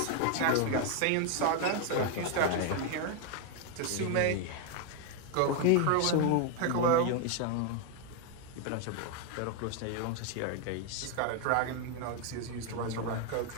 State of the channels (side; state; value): both; different; correlation 0.01